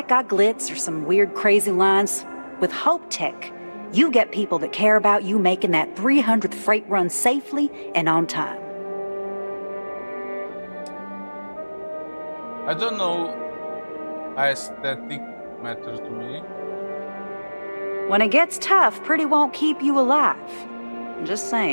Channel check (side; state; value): both; inverted; correlation -1.00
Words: got glitz or some weird crazy lines. With Hope Tech, you get people that care about you making that 300th freight run safely and on time. I don't know. Aesthetic matter to me. When it gets tough, pretty won't keep you alive. I'm just